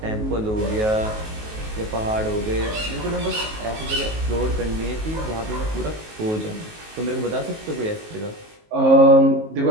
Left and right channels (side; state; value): left; late; 19 ms